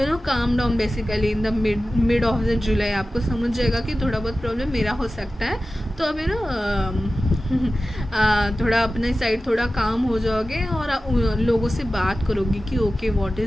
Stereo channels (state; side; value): normal; both; correlation 0.95